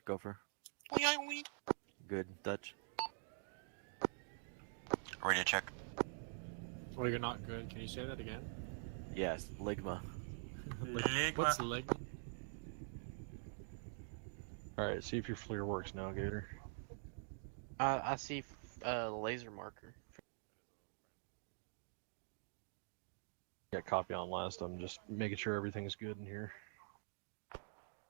Gopher. Wee. Good. Dutch. Radio check. Oh, you're not good. Can you say that again? Yes. Ligma. What's leg? Alright, see if your FLIR works now, Gator. I see laser marker. Yeah, copy on last. I'm just making sure everything's good in here.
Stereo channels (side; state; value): left; silent; digital silence